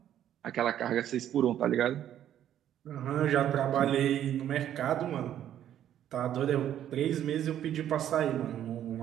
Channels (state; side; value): quieter; left; 10.9 dB